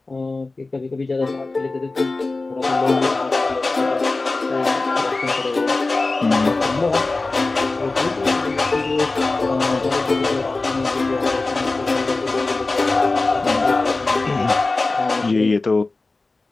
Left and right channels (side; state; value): right; quieter; 3.4 dB